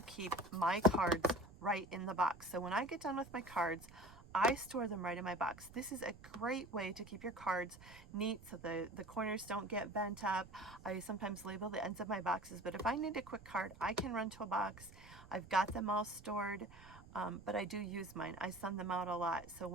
my cards right in the box. So when I get done with my cards, I store them right in my box. This is a great way to keep your cards neat so the corners don't get bent up. I sometimes label the ends of my boxes, but if I need a quick card, I can run to a box. I've got them all stored, but I do use mine. I send them out a lot. So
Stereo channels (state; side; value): noise; right; rumble, 19 dB below the sound